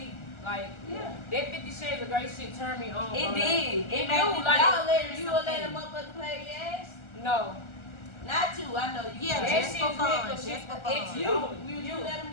Like, Yeah. that 50 Shades of Grey shit turned me on. It bro. did. It do, made me like, Y'all let you will let them motherfucker play your ass? No. Not you. I know you. Yeah, That just shit for is fun. nigga Just shit. for It's fun. You let them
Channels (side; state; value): right; late; 1.3 ms